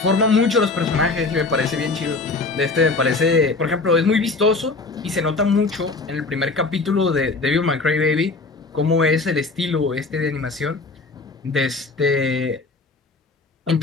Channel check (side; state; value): right; quieter; 3.6 dB